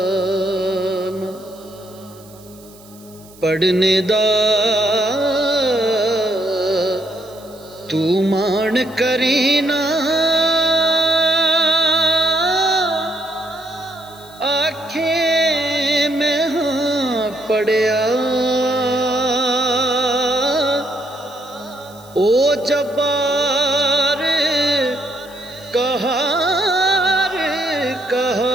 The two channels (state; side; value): noise; right; hiss, 25 dB below the sound